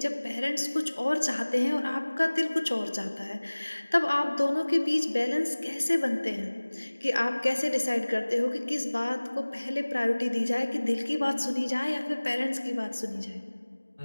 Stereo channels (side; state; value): both; inverted; correlation -1.00